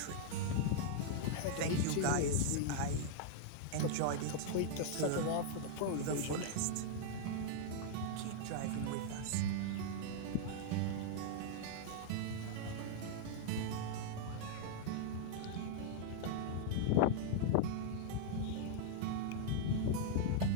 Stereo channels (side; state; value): both; different; correlation -0.01